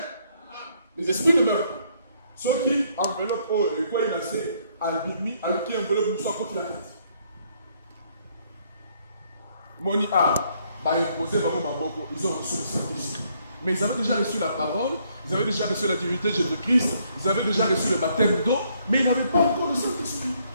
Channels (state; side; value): inverted; both; correlation -0.69